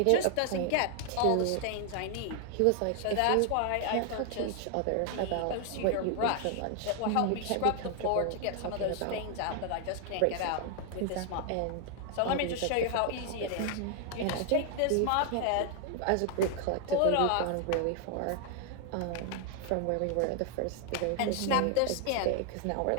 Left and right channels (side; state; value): both; different; correlation 0.00